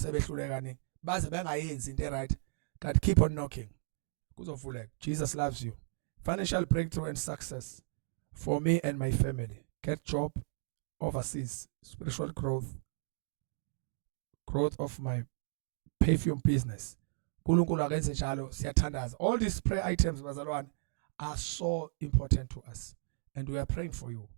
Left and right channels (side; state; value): left; silent; digital silence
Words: sebehluleka kaningi. Baze bengayenzi into right. God keep on knocking. Kuzovuleka. Jesus loves you. Financial breakthrough and success for me and my family. Get job overseas. Spiritual growth of my perfume business. Nkulunkulu akenze njalo siyathandaza. All these prayer items bazalwane are so important to us and we are praying for you.